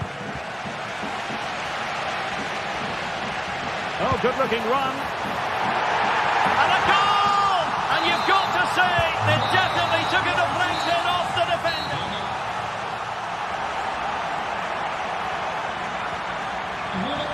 Oh, good-looking run. And a goal! And you've got to say, they definitely took a deflection off the defender.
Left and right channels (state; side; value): identical; both; correlation 1.00